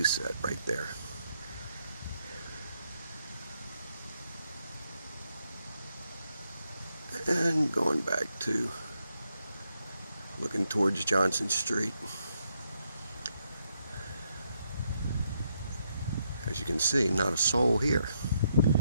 right there. And going back to looking towards Johnson Street. As you can see, not a soul here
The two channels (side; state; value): both; inverted; correlation -0.78